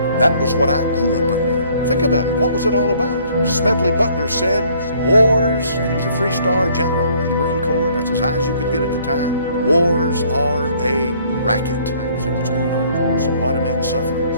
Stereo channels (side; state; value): both; inverted; correlation -0.60